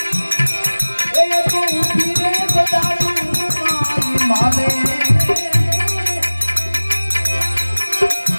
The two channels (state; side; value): inverted; both; correlation -1.00